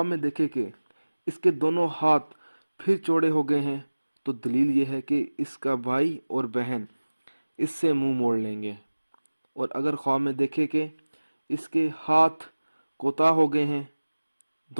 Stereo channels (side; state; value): both; inverted; correlation -1.00